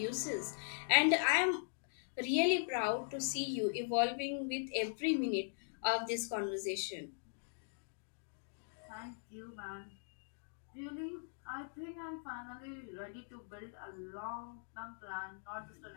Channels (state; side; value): silent; right; digital silence